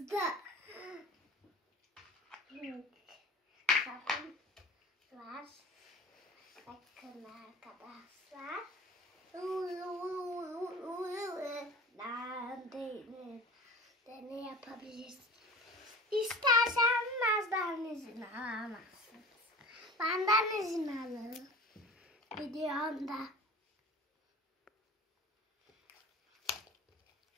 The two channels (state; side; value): normal; both; correlation 0.39